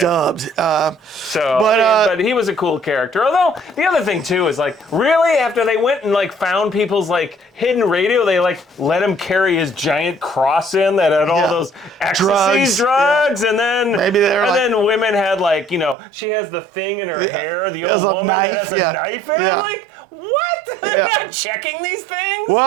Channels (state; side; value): drops out; left; at 16.0 s